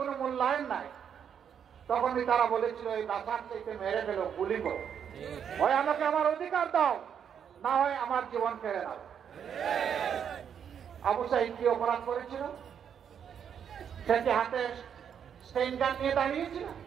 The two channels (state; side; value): quieter; left; 8.1 dB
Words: মূল্যায়ন নাই, তখনই তারা বলেছিল এই বাসার চাইতে মেরে ফেলো, গুলি করো, হয় আমাকে আমার অধিকার দাও, না হয় আমার জীবন কেড়ে নাও। আবু সাঈদ কি অপরাধ করেছিল? সে কি হাতে স্টেইন গান নিয়ে দাঁড়িয়েছিল?